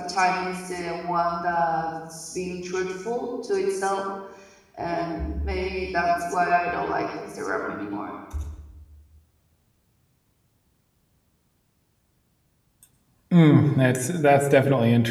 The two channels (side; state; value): both; identical; correlation 1.00